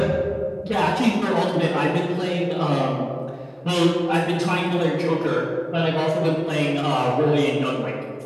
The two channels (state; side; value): identical; both; correlation 1.00